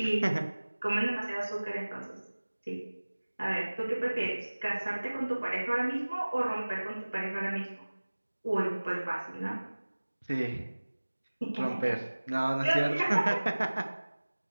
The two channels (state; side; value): inverted; both; correlation -1.00